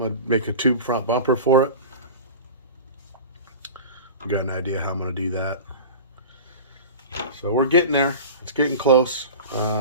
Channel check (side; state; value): both; inverted; correlation -0.33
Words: make a tube front bumper for it. I got an idea how I'm gonna do that. So we're getting there. It's getting close.